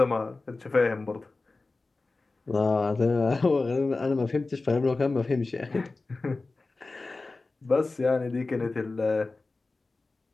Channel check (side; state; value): right; quieter; 3.5 dB